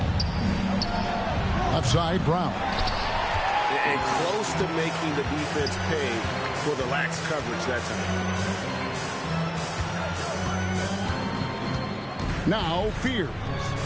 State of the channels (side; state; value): both; identical; correlation 1.00